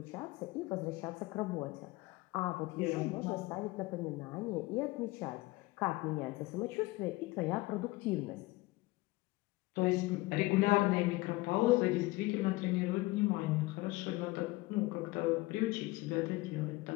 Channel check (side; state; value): right; quieter; 20.8 dB